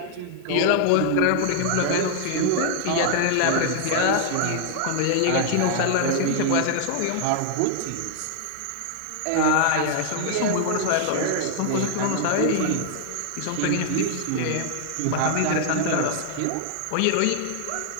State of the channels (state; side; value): different; both; correlation 0.00